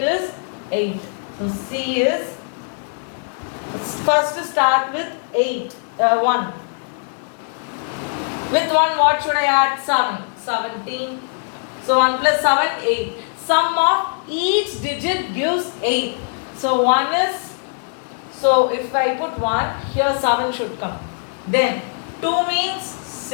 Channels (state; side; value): silent; right; 65 dB below the other